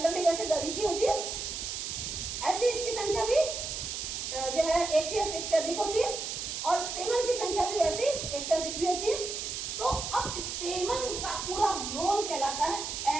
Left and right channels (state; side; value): noise; right; hiss, 4 dB below the sound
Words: वैसे अधिक ही होती है। ऐसी इसकी संख्या भी जो है एक से अधिक होती है, और स्टेमन की संख्या भी वैसी एक से अधिक भी होती है। तो अब स्टेमन का पूरा रोल कहलाता है